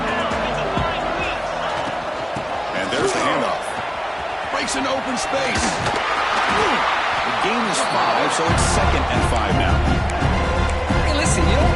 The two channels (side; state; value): both; identical; correlation 1.00